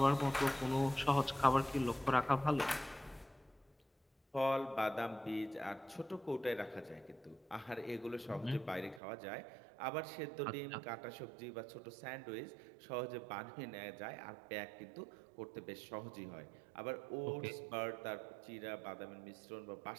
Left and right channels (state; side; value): drops out; left; at 9.0 s